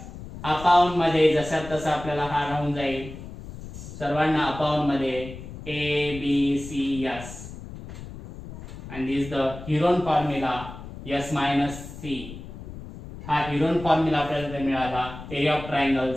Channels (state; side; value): noise; left; rumble, 12 dB below the sound